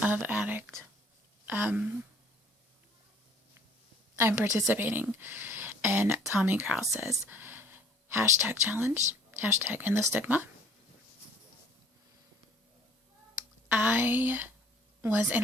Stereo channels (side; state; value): both; normal; correlation 0.54